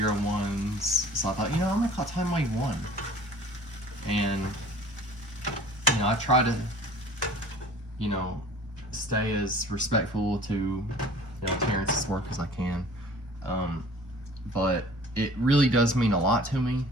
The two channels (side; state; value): both; normal; correlation 0.48